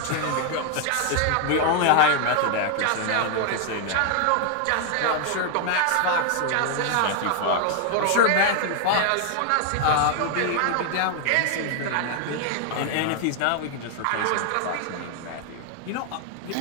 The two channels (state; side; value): different; both; correlation 0.00